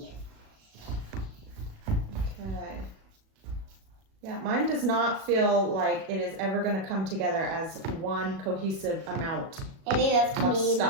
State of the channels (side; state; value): left; late; 37 ms